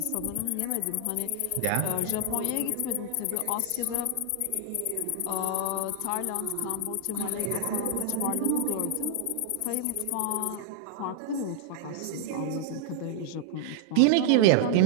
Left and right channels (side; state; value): both; different; correlation 0.00